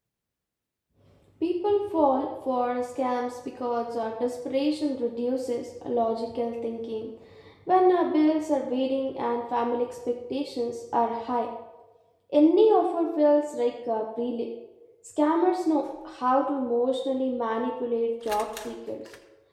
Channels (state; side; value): identical; both; correlation 1.00